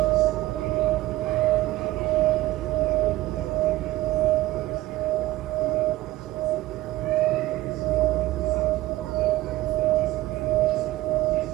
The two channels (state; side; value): quieter; left; 17.4 dB